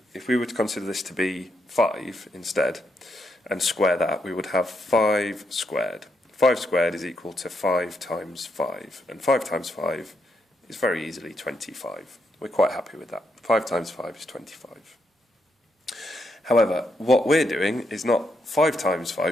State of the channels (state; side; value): normal; both; correlation 0.80